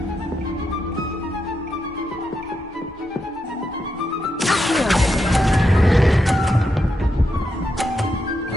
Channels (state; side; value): normal; both; correlation 0.84